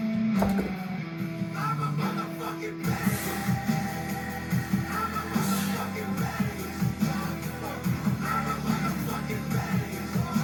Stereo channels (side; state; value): both; identical; correlation 1.00